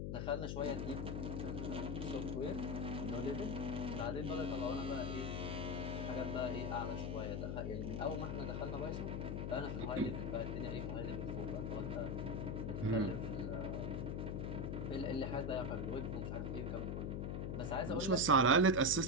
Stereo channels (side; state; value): left; noise; hum, 1 dB below the sound